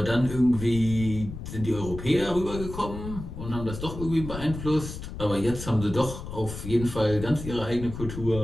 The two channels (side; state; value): left; noise; rumble, 9 dB below the sound